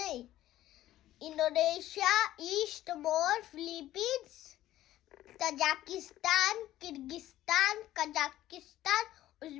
Indonesia, East Timor, Philippines, Tajikistan, Kyrgyzstan, Kazakhstan,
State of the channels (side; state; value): right; quieter; 14.1 dB